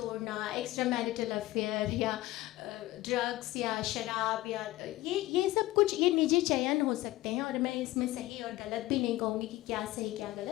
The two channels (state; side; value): quieter; right; 17.2 dB